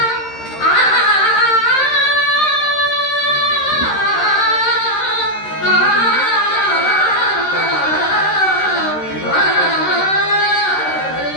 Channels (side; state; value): right; late; 13 ms